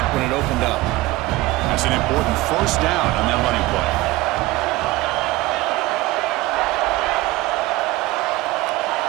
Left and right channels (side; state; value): left; quieter; 19.0 dB